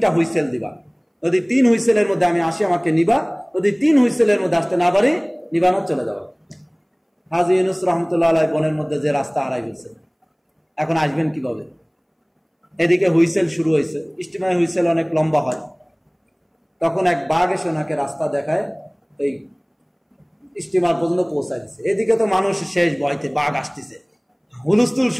হুইসেল দিবা, যদি 3 হুইসেলের মধ্যে আমি আসি আমাকে নিবা, যদি 3 হুইসেলের মধ্যে আসতে না পারি নিবানো চলে যাওয়া। হাজী ইউনুস রহমতুল্লাহ আলাইহি বনের মধ্যে যে রাস্তা হারাই ফেলছে, এখন আসবেন কিভাবে? এদিকে হুইসেল শুরু হয়েছে, স্টিমার হুইসেল অনেক লম্বা হয়। তখন এক বাঘ এসে ওনাকে রাস্তা দেখায়, এই স্টিমার পর্যন্ত পৌঁছায় দিচ্ছে। এদিকে তো মানুষ শেষ ভয়তে, বাঘ আসতেছে, হুলস্থুল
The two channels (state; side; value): identical; both; correlation 1.00